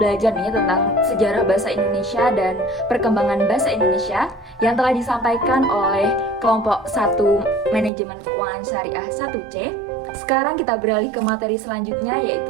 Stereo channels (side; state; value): left; drops out; at 7.9 s